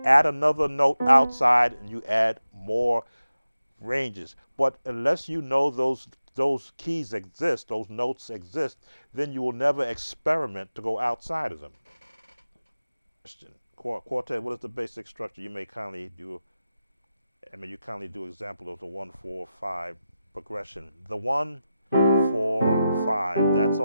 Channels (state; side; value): inverted; both; correlation -0.91